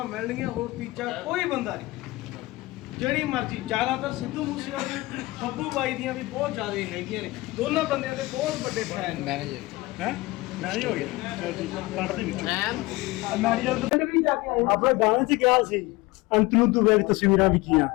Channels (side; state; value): right; quieter; 20.9 dB